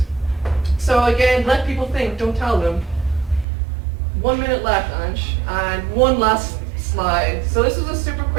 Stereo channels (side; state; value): left; drops out; at 3.5 s